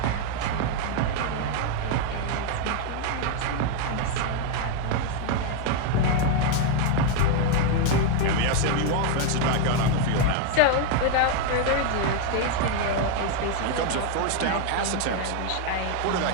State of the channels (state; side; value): different; both; correlation 0.01